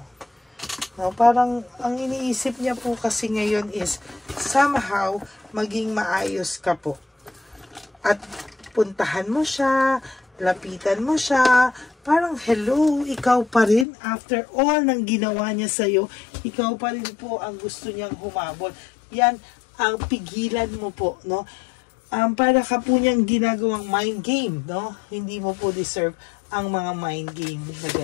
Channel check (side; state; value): right; drops out; at 13.9 s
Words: No, parang ang iniisip niya po kasi ngayon is somehow maging maayos ka po. At puntahan mo siya, lapitan mo siya, parang hello, ikaw pa rin, after all ng ginawa niya sa'yo, ikaw pa rin po ang gusto niyang humabol. Yan ang pigilan mo po, no? Para ka po niyang ginagawang mind game, no? Hindi mo po deserve ang mga mind game na